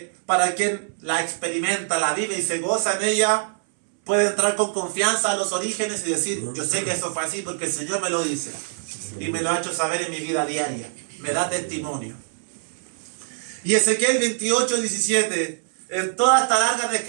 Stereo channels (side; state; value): left; silent; 63 dB below the other